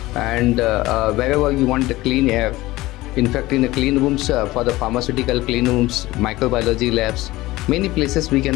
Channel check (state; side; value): quieter; right; 18.5 dB